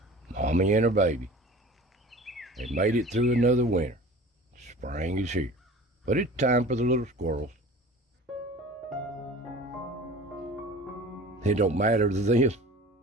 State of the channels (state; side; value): normal; both; correlation 0.41